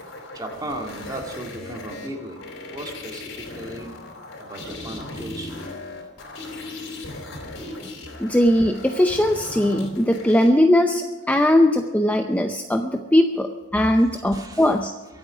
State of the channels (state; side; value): normal; both; correlation 0.84